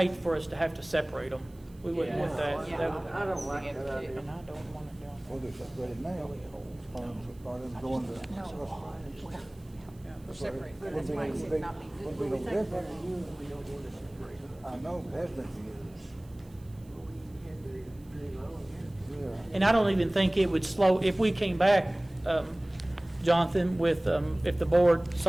for us to have to separate them. We wouldn't want that. Yeah, That would- I don't like that idea. And I don't want to do them. Well, they're separated now. Rather than going to. We're separated. Wouldn't be no big- wouldn't be no difference. I know, it has been for years. Yeah. And I don't even think it would slow, if we came back, Jonathan, with, if the board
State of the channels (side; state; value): right; noise; hiss, 29 dB below the sound